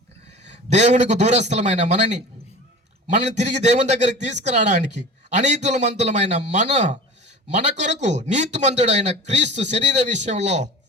దేవునికి దూరస్థలమైన మనని తిరిగి దేవుని దగ్గరికి తీసుకురావడానికి అనీతిమంతులమైన మన కొరకు నీతిమంతుడైన క్రీస్తు శరీర విషయంలో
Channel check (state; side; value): normal; both; correlation 0.38